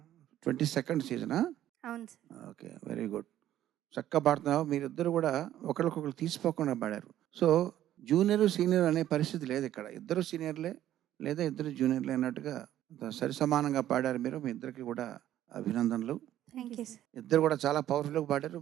22nd సీజనా? అవును సార్. Okay, very good. చక్కగా పాడుతున్నావు. మీరిద్దరు కూడా ఒకరికొకరు తీసిపోకుండా పాడారు. సో జూనియర్ సీనియర్ అనే పరిస్థితి లేదు ఇక్కడ. ఇద్దరు సీనియర్లే లేదా ఇద్దరు జూనియర్లే అన్నట్టుగా సరి సమానంగా పాడారు మీరు. మీ ఇద్దరికి కూడా అభినందనలు. Thank you sir. ఇద్దరు కూడా చాలా పవర్ఫుల్గా పాడారు.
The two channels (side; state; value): left; quieter; 12.3 dB